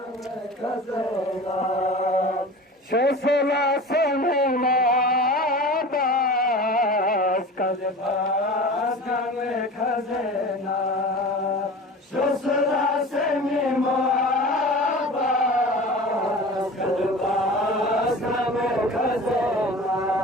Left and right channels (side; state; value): both; normal; correlation 0.36